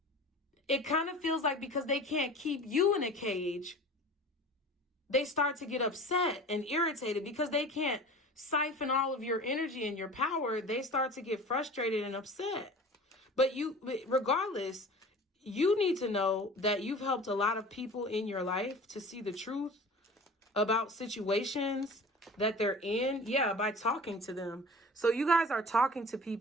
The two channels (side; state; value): both; normal; correlation 0.40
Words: it kind of feels like because they can't keep you in a cage, they start to get upset and irritated because they can't siphon all of your energy and your power. They start to get frustrated and upset. But regardless, you need to know that you've helped a lot of people in your life to see the truth about situations that they're in. Yeah, by talking to them. So you guys are talking to